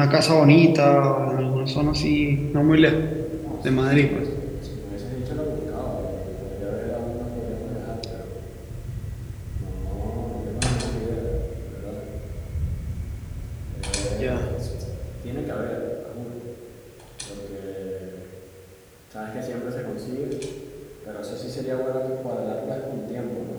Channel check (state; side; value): identical; both; correlation 1.00